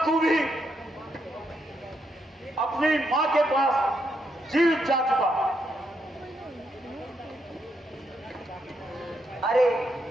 तू भी अपनी माँ के पास जीवित जा चुका। अरे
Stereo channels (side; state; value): both; normal; correlation 0.79